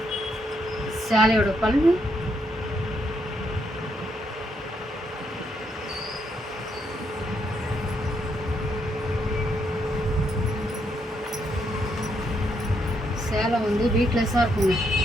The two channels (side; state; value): both; normal; correlation 0.76